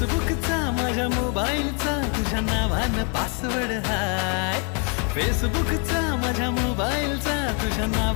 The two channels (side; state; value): right; quieter; 36.8 dB